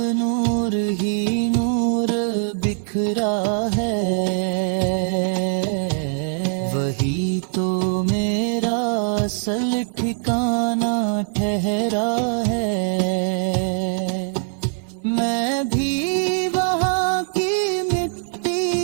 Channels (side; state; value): left; silent; 64 dB below the other